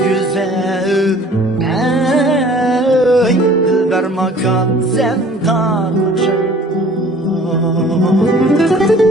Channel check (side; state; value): both; normal; correlation 0.51